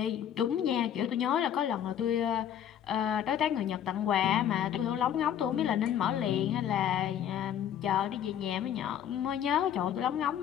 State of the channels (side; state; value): right; quieter; 9.9 dB